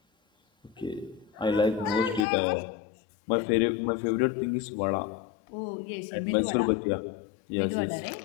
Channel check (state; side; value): drops out; right; at 2.2 s